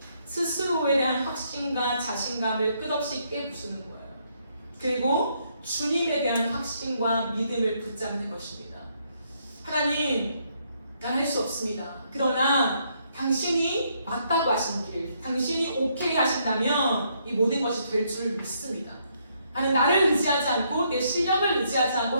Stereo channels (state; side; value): inverted; both; correlation -0.73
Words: 스스로에 대한 확신과 자신감을 끝없이 깨부수는 거예요. 그리고 주님에 대한 확신과 믿음을 붙잡는 것입니다. 하나님, 난 할 수 없습니다. 그러나 당신이 맞다고 하신 길, 당신이 오케이 하신다면 이 모든 것이 될 줄 믿습니다. 나는 나를 의지하지 않고 내 실력을 의지하지 않고